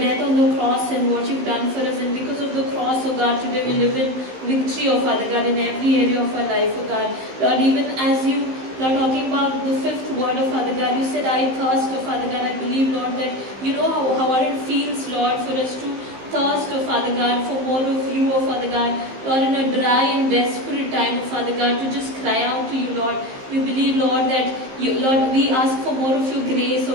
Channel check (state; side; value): late; left; 15 ms